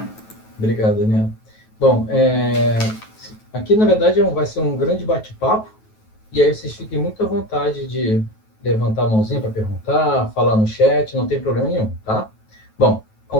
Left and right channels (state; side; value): late; right; 9.3 ms